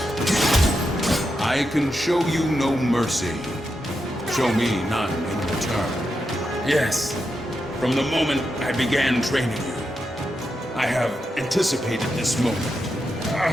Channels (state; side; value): normal; both; correlation 0.86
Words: I can show you no mercy. Show me none in return. Yes, from the moment I began training you, I have anticipated this moment.